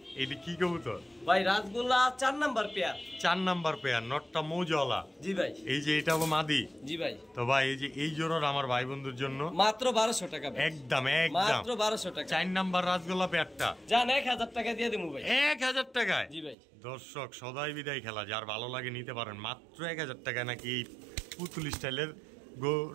এইটা কি কবুতর ভাই? রাজগোল্লা 4 নাম্বার পেয়ার। 4 number pair. নটটা মৌজওয়ালা। জি ভাই। এই যে এটা হলো মাদি। জি ভাই। তো ভাই এই যে এই জোড়ার আমার ভাই বন্ধুর জন্য মাত্র 1200 টাকা ভাই। একদম একদম মাত্র 1200 টাকা। 4 নাম্বার রাজগোল্লা পেয়ারটা জান 1000 টাকা দিয়ে দেবো ভাই। 1000 টাকায়? জি ভাই। দর্শক সদাই বিদায় খেলা যার ভালো লাগে নিতে পারেন মাত্র 1000 টাকায় নাকি এই পুতুল স্টাইলের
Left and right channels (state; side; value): drops out; left; at 16.6 s